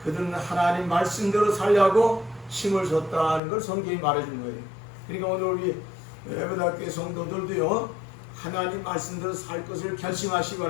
그들은 하나님 말씀대로 살려고 힘을 줬다는 걸 성경이 말해주는 거예요. 그러니까 오늘 우리 에베다교회 성도들도요, 하나님 말씀대로 살 것을 결심하시기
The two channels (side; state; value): right; drops out; at 3.4 s